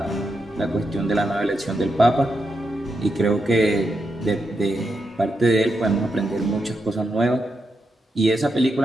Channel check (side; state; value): both; normal; correlation 0.85